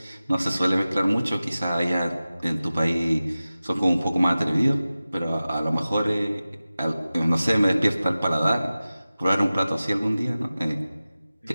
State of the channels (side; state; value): both; inverted; correlation -0.96